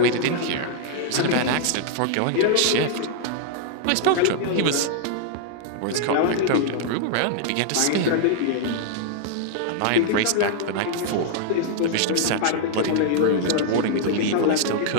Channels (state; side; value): different; both; correlation -0.01